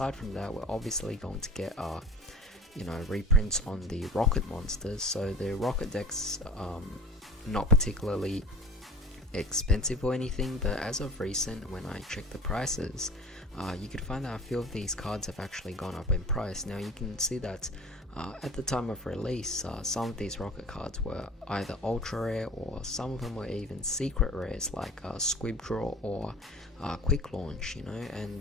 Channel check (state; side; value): normal; both; correlation 0.41